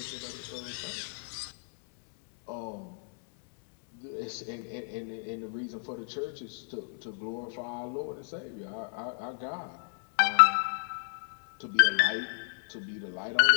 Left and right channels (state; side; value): silent; right; 56 dB below the other